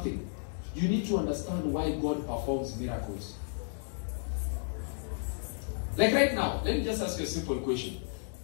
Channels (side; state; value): right; silent; digital silence